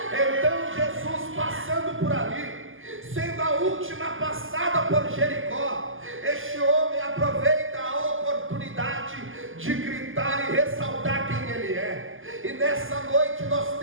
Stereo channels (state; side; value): late; left; 0.58 ms